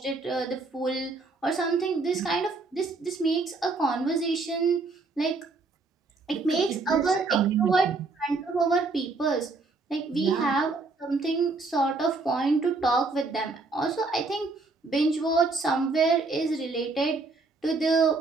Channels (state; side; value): quieter; left; 3.7 dB